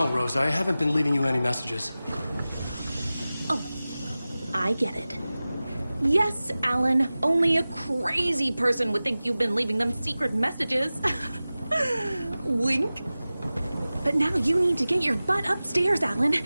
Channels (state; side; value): inverted; both; correlation -0.97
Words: Rose, I haven't been leaving you any messages. Oh, I get it. Yes, Alan, only a crazy person would think you've been leaving them secret messages. Wink. But now you need to get your butt upstairs, Alan.